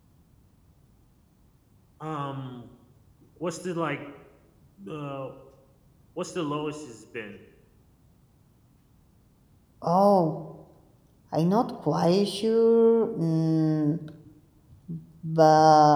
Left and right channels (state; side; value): identical; both; correlation 1.00